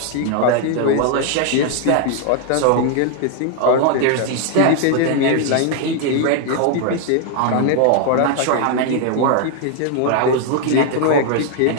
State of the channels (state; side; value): different; both; correlation 0.00